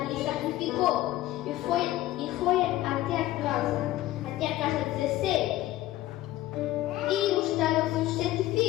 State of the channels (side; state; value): right; quieter; 15.5 dB